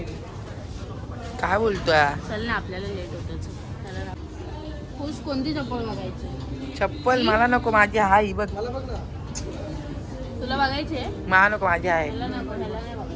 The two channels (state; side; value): identical; both; correlation 1.00